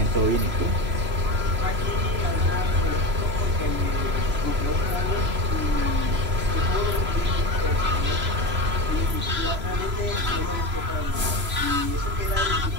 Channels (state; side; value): late; left; 3.0 ms